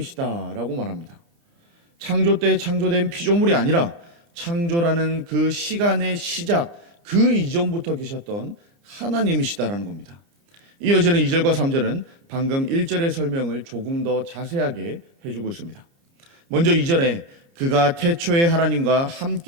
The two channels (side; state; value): left; late; 29 ms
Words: 말합니다. 창조 때 창조된 피조물이 아니라 창조라는 그 시간의 시작, 그 이전부터 계셨던 하나님이시다라는 겁니다. 이어지는 2절과 3절은 방금 1절의 설명을 조금 더 자세하게 해주고 있습니다. 먼저 2절에 그가 태초에 하나님과